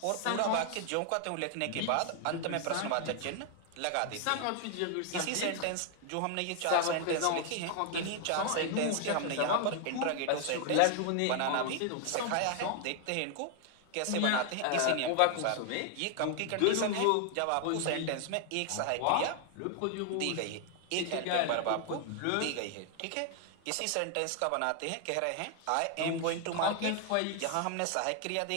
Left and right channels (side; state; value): both; different; correlation 0.00